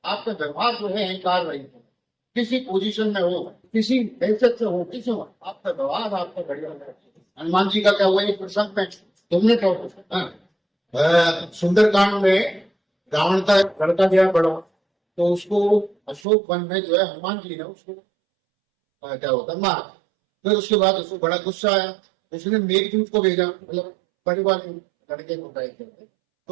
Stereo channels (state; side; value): drops out; left; at 16.2 s